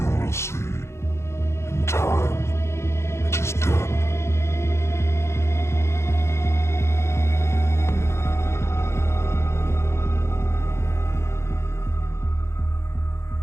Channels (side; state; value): right; late; 0.13 ms